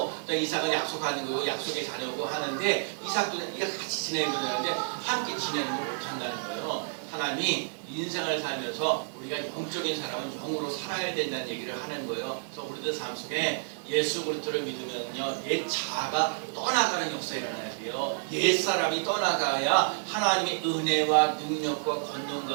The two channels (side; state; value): left; silent; 58 dB below the other